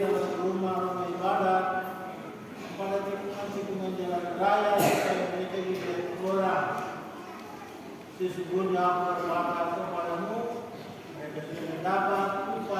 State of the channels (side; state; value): both; identical; correlation 1.00